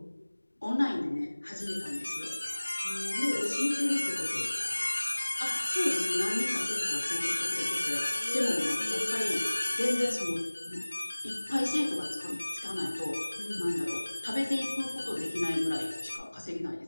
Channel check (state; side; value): inverted; both; correlation -1.00